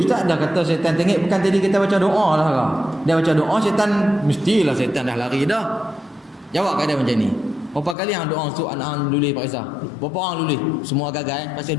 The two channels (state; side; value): drops out; right; at 8.0 s